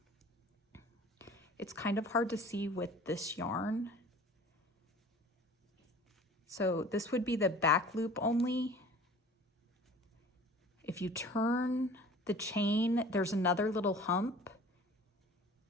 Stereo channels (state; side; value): normal; both; correlation 0.46